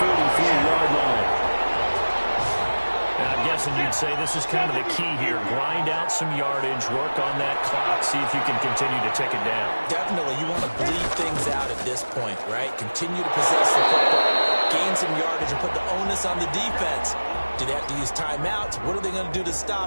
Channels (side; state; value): both; inverted; correlation -1.00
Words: line. I'm guessing you'd say this is kind of the key here. Grind out some yardage, work on that clock, see if you can continue to tick it down. Definitely, you want to bleed things out at this point, right? Continue to possess the football, gain some yardage, and put the onus on the defense. Do they have to use timeouts? What are they going to do to